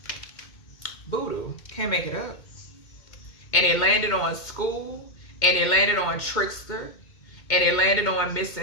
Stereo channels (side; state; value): right; late; 2.1 ms